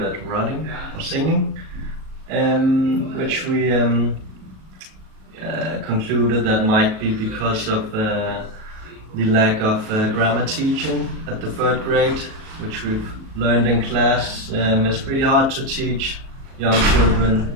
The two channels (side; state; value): left; late; 37 ms